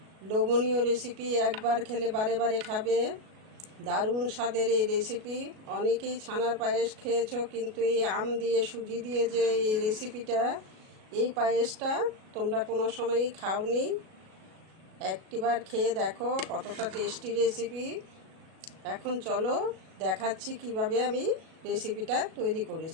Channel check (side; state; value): left; late; 37 ms